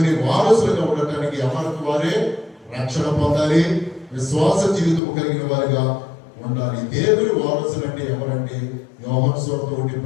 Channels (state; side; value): drops out; right; at 5.0 s